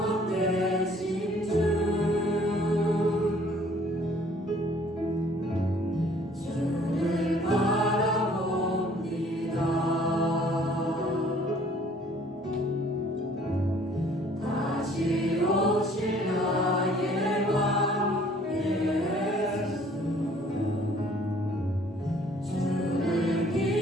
되시 다시 오실 나의 왕 예수 주를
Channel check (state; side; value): normal; both; correlation 0.57